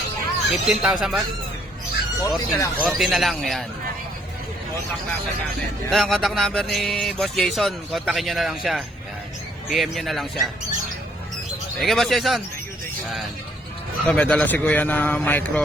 15,000 ba? 14 na lang. 14 na lang, yan. Contact natin. Ito ang contact number ni Boss Jason. Kontakin nyo na lang siya. Yan. PM nyo na lang siya. Sige, Boss Jason. Yan. Ito, may dala si Kuya na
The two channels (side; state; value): both; normal; correlation 0.66